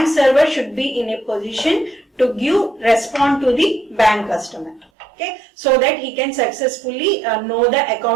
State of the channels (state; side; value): drops out; left; at 4.9 s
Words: server should be in a position to respond to the bank customer. Okay, so that he can successfully know the